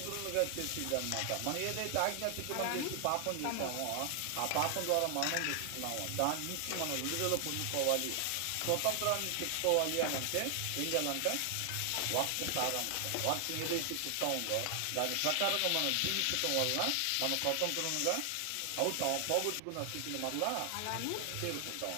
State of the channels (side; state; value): both; different; correlation 0.00